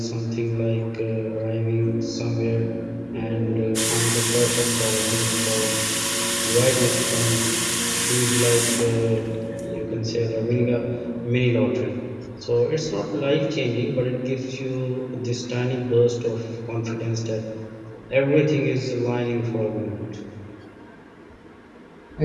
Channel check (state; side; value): identical; both; correlation 1.00